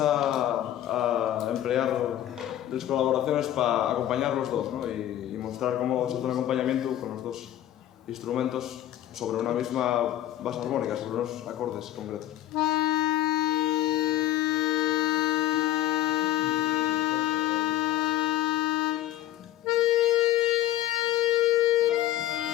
a emplear las colaboraciones para acompañar los dos, ¿no? y mostrar cómo se hace un acompañamiento con los dos instrumentos sobre una misma base armónica, sobre unos acordes concretos.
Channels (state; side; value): quieter; right; 13.0 dB